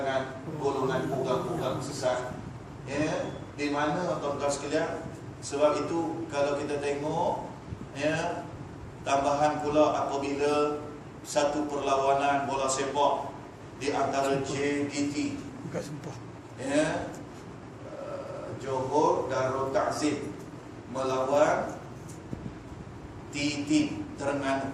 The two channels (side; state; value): both; identical; correlation 1.00